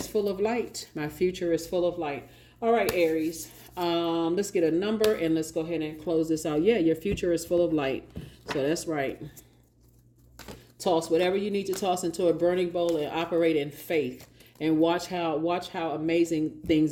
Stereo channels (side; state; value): both; identical; correlation 1.00